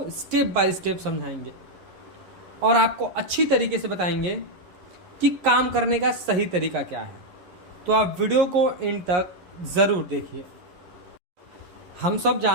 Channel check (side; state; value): left; late; 11 ms